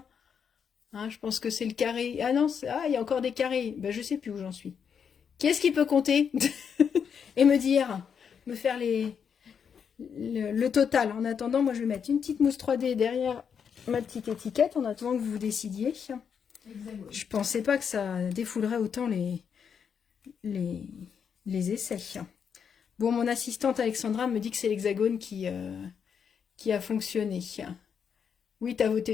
Hein, je pense que c'est le carré. Ah non, il y a encore des carrés. Ben, je sais plus où j'en suis. Qui est-ce qui peut compter et me faire le total? En attendant, moi, je vais mettre une petite mousse 3D derrière ma petite étiquette en attendant que vous vous décidiez. Hexagone. Je pensais pas que ça défoulerait autant les essais. Bon, mon assistante Alexandra me dit que c'est l'hexagone qui a fonctionné. Oui, tu as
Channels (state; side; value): quieter; right; 7.1 dB